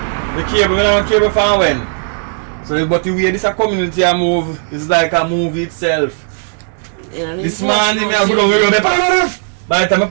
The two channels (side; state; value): left; silent; 59 dB below the other